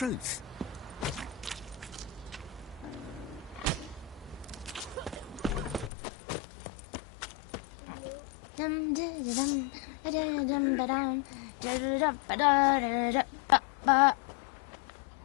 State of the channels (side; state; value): right; drops out; at 5.9 s